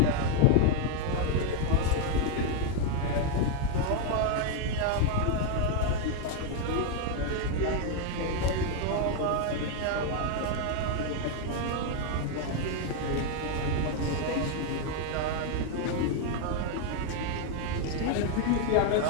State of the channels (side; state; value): both; different; correlation 0.00